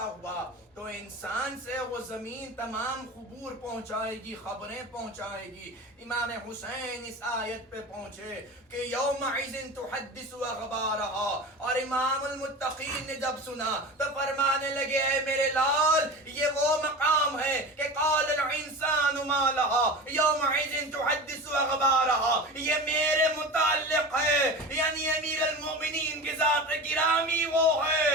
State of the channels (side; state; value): both; normal; correlation 0.31